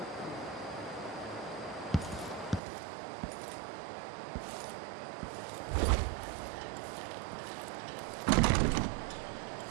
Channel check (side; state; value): left; drops out; at 2.6 s